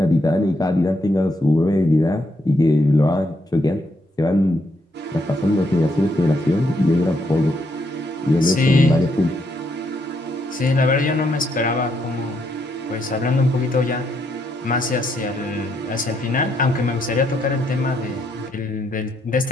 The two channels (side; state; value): both; normal; correlation 0.76